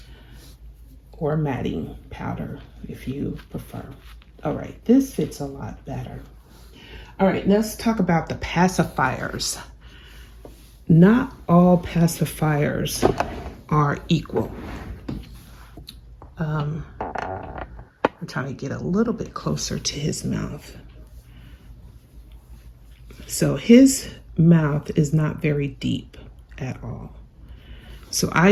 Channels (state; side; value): identical; both; correlation 1.00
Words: or matting powder if you prefer. All right, this fits a lot better. All right, let's talk about the pacifiers. Not all pacifiers are equal. I'm trying to get a little bit closer to his mouth. So his mouth is not very deep at all. So I